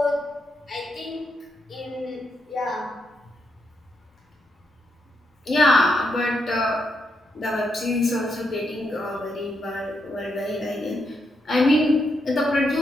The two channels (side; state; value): both; normal; correlation 0.80